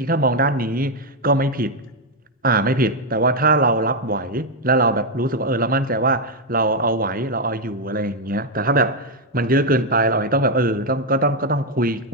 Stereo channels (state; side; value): normal; both; correlation 0.02